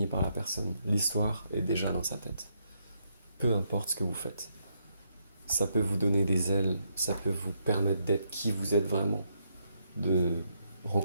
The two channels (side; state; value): both; inverted; correlation -0.77